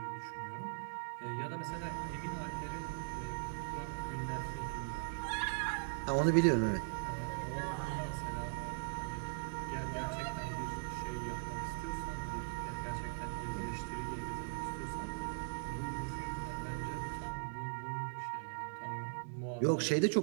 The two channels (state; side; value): silent; left; 51 dB below the other